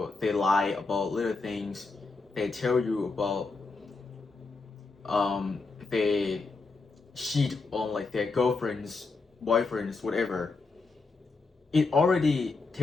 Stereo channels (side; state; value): right; quieter; 4.0 dB